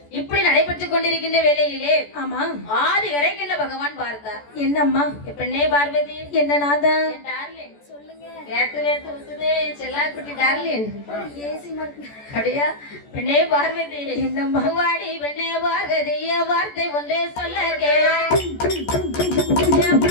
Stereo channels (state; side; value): late; right; 14 ms